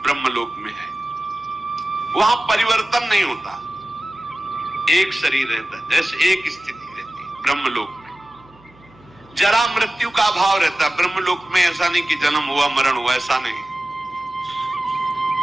ब्रह्मलोक में है। वहां परिवर्तन नहीं होता, एक शरीर रहता है, जैसे एक स्थिति रहती है। ब्रह्मलोक में जरा मृत्यु का अभाव रहता है। ब्रह्मलोक में ऐसा नहीं कि जन्म हुआ मरण हुआ, ऐसा नहीं।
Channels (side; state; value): right; noise; hum, 27 dB below the sound